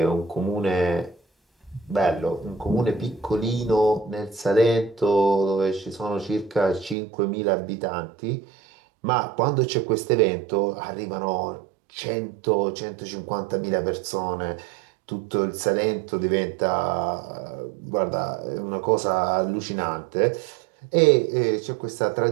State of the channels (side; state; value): left; drops out; at 7.0 s